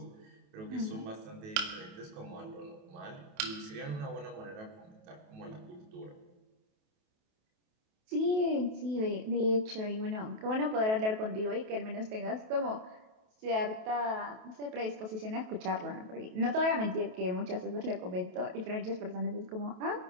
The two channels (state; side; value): late; left; 28 ms